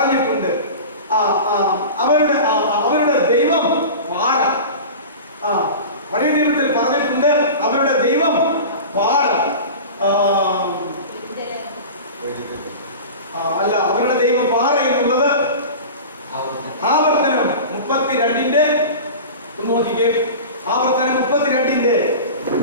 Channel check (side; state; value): both; inverted; correlation -0.33